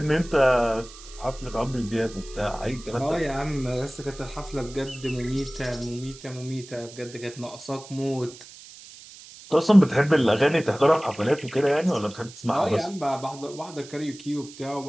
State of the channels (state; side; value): noise; right; hiss, 18 dB below the sound